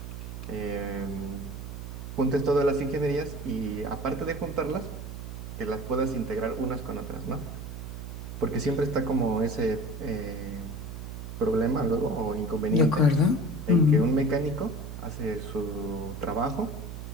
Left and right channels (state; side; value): noise; right; hum, 9 dB below the sound